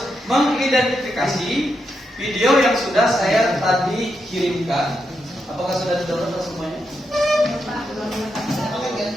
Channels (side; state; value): both; normal; correlation 0.84